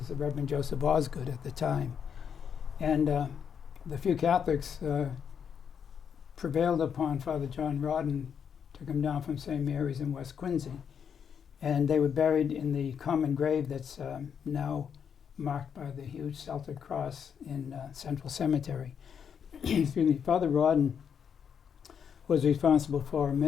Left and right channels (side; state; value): right; quieter; 7.5 dB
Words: the Reverend Joseph Osgood at the time. And the few Catholics prevailed upon Father John Rodden to come down from St. Mary's in West Quincy. And they were buried in the common grave that's now marked by the huge Celtic cross in Central Cemetery. Excuse me. Father Rodden was responsible for